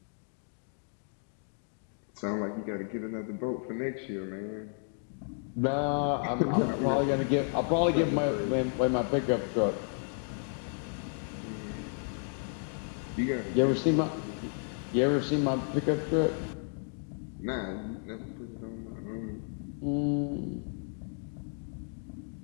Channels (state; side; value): silent; right; 56 dB below the other